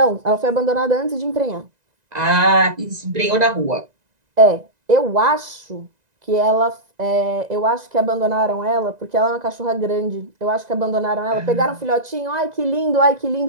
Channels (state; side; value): late; left; 1.9 ms